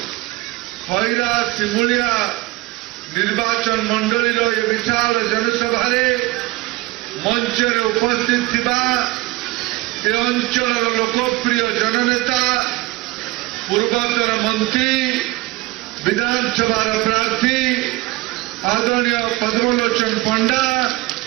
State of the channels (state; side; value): quieter; left; 20.3 dB